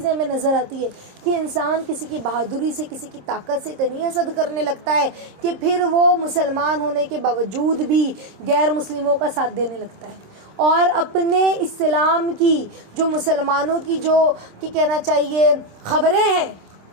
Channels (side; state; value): left; late; 26 ms